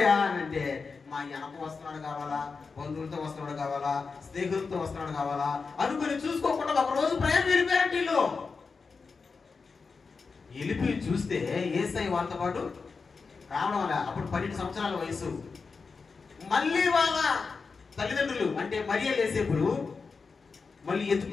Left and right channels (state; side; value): quieter; right; 4.8 dB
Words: అని అంటే, మా వెనక వస్తున్నాడు కావాలా, బంధువులతో వస్తున్నాడు కావాలా, స్నేహితులతో వస్తున్నాడు కావాలా అనుకుని చూసుకోకుండా ఒక రోజు ప్రయాణం వెళ్ళిపోయారంటే వీళ్ళు. వెళ్ళిపోయి చూస్తే యేసయ్య వాళ్ళతో పాటు రావడం వల్ల అప్పుడు 12 సంవత్సరాల వయసు. మళ్ళీ వాళ్ళ తల్లిదండ్రులు అంటే మరియా యేసేపులు మళ్ళీ